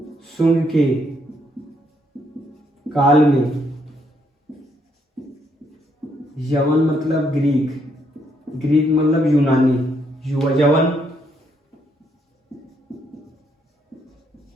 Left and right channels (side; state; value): both; normal; correlation 0.74